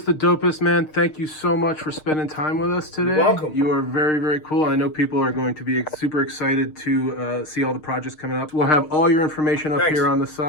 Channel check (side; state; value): right; late; 6.5 ms